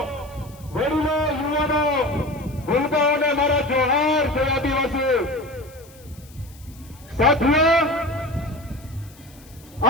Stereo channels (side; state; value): left; noise; hiss, 25 dB below the sound